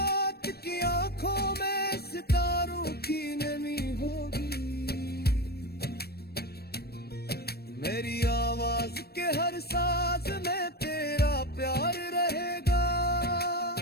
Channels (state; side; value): late; right; 0.46 ms